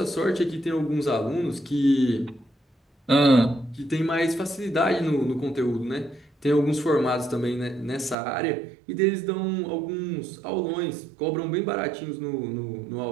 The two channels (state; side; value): drops out; left; at 8.2 s